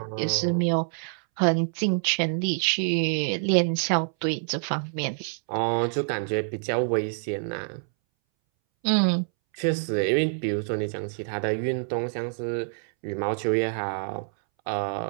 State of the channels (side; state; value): left; silent; 60 dB below the other